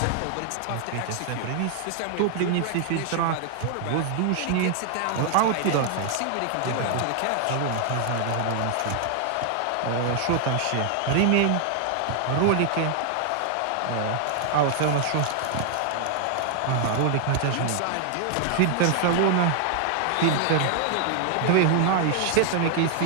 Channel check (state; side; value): different; both; correlation 0.00